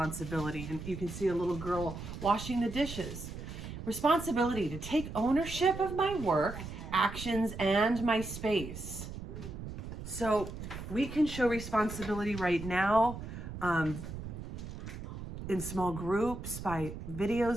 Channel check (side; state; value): right; noise; rumble, 9 dB below the sound